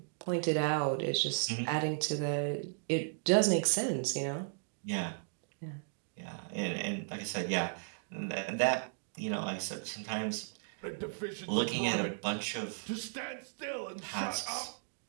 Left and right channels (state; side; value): silent; left; digital silence